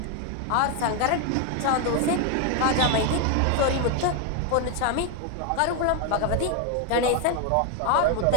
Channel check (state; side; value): different; both; correlation 0.01